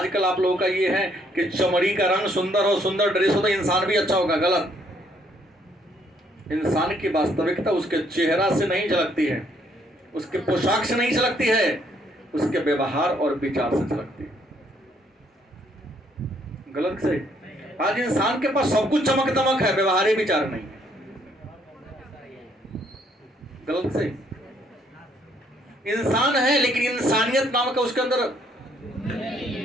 आप लोगों का ये है कि चमड़ी का रंग सुंदर हो, सुंदर ड्रेस हो तो इंसान भी अच्छा होगा। गलत। इंसान की वास्तविकता उसके चेहरा से नहीं झलकती है, उसके पोशाक से नहीं झलकती है, उसके व्यवहार और विचार से झलकती है। गलत से? आज इंसान के पास सब कुछ चमक दमक है, व्यवहार विचार नहीं। गलत से? इंसान है लेकिन इंसानियत नाम का उसके अंदर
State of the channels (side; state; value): both; normal; correlation 0.68